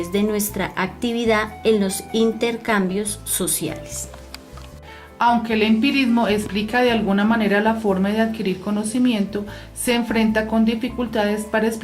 de nuestra actividad en los intercambios sociales. Aunque el empirismo explica de alguna manera la forma de adquirir conocimiento, se enfrenta con dificultades para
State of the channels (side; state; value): both; identical; correlation 1.00